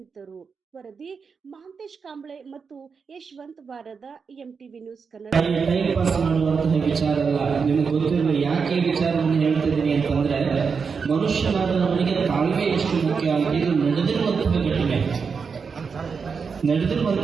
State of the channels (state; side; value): quieter; left; 5.6 dB